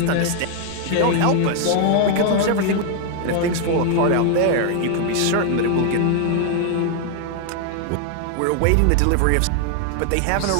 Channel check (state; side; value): different; both; correlation 0.00